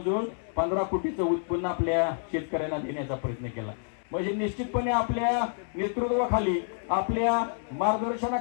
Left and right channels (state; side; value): silent; right; 58 dB below the other